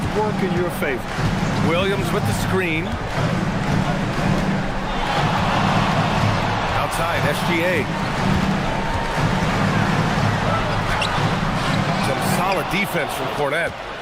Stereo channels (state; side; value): identical; both; correlation 1.00